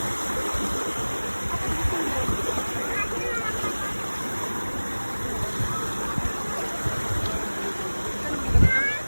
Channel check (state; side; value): inverted; both; correlation -1.00